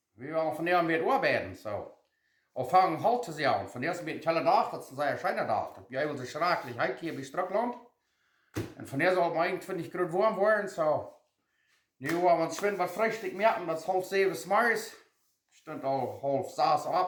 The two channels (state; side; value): identical; both; correlation 1.00